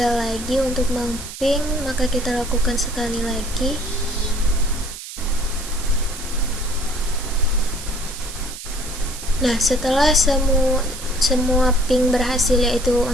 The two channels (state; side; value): noise; right; hiss, 11 dB below the sound